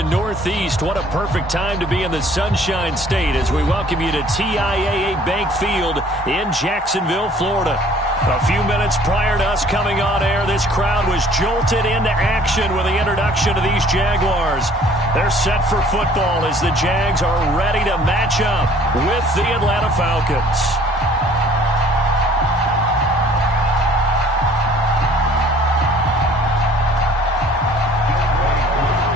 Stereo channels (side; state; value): both; normal; correlation 0.55